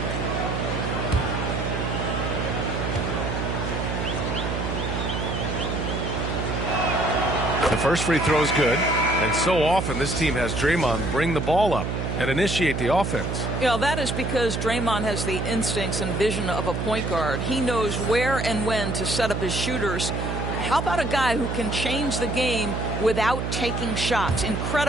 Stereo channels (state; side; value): noise; right; hum, 2 dB below the sound